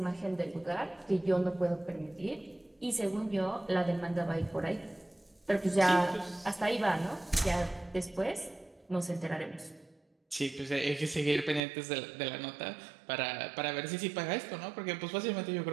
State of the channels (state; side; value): drops out; left; at 11.6 s